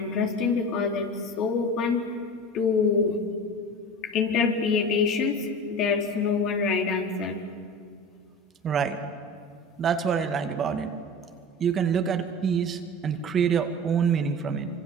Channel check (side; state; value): both; normal; correlation 0.34